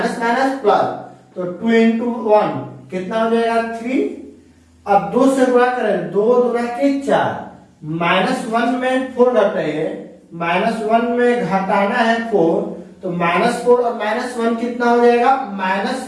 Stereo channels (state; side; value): identical; both; correlation 1.00